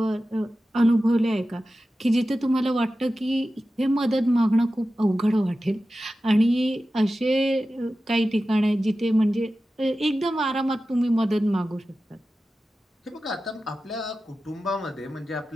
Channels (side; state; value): both; normal; correlation 0.94